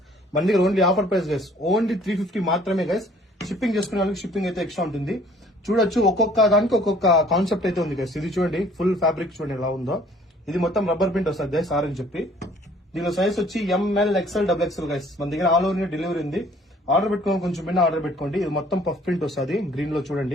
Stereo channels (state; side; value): normal; both; correlation 0.56